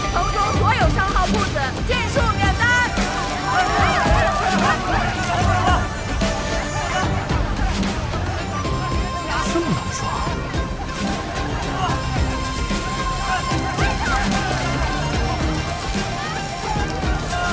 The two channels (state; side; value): identical; both; correlation 1.00